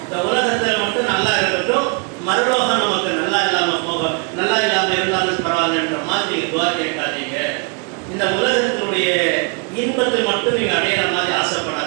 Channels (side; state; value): left; quieter; 33.9 dB